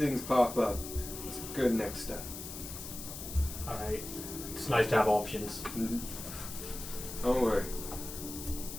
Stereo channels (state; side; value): noise; left; hiss, 9 dB below the sound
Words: pop up, it's a good next step. Alright. It's nice to have options. Mm-hmm. Don't worry.